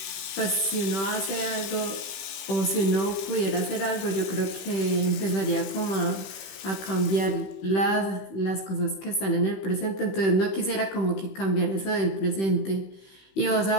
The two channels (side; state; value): right; late; 15 ms